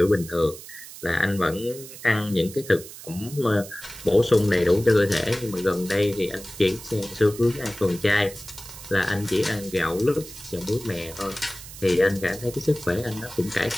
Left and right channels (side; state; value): right; noise; hiss, 15 dB below the sound